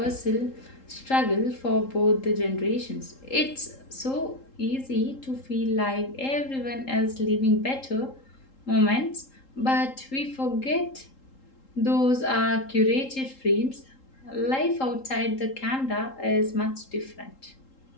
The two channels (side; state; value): right; late; 3.8 ms